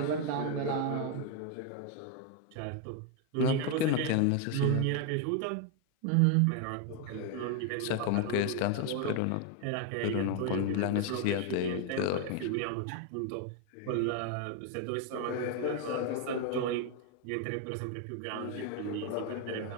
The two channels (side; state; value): both; different; correlation 0.01